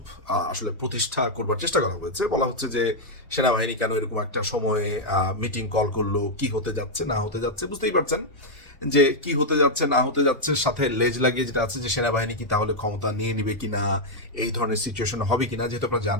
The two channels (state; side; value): normal; both; correlation -0.02